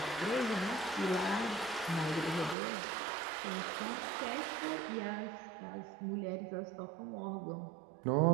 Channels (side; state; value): left; drops out; at 2.6 s